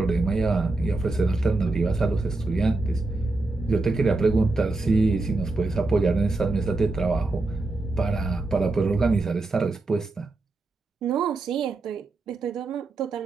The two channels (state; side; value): quieter; left; 3.3 dB